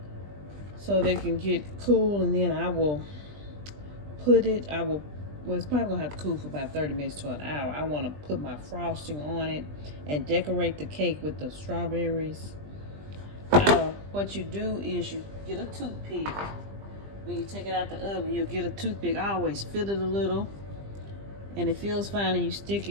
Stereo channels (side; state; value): left; late; 20 ms